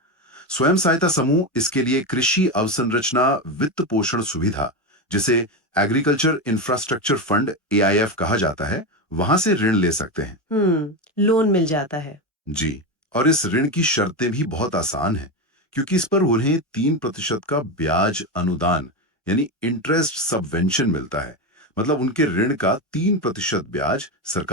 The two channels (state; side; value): normal; both; correlation 0.15